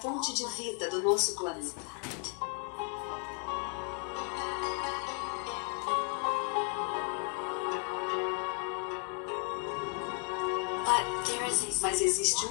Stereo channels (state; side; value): quieter; right; 34.0 dB